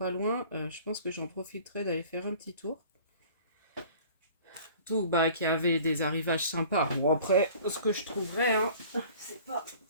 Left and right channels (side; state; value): both; inverted; correlation -0.47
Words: loin, je pense que j'en profiterai d'aller faire un petit tour. Tout, bah, qu'il y avait des arrivages sympas. Bon, après, ce que je trouverais, hein, c'est pas...